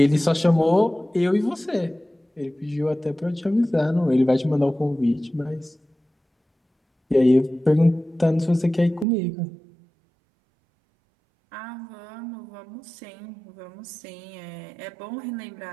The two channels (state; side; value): drops out; left; at 9.1 s